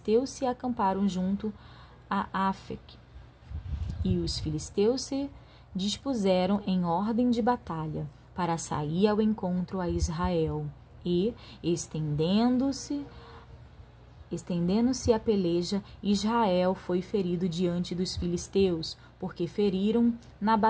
se acamparam junto a Afec. E os filisteus se dispuseram em ordem de batalha para sair ao encontro a Israel. E, estendendo-se a peleja, Israel foi ferido diante dos filisteus, porque feriram na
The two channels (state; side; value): identical; both; correlation 1.00